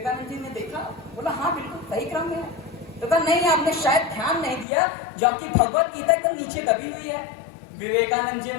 जी ने देखा, बोला हाँ बिल्कुल सही क्रम में है। तो कहा नहीं, आपने शायद ध्यान नहीं दिया, जो आपकी भगवत गीता एकदम नीचे दबी हुई है। विवेकानंद जी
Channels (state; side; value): drops out; right; at 4.7 s